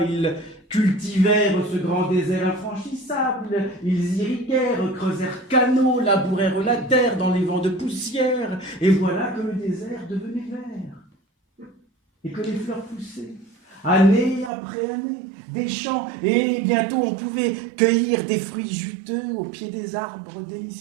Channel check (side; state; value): left; drops out; at 14.5 s